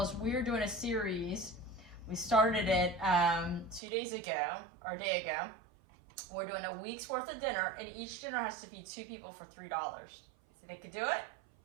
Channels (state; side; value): drops out; left; at 3.8 s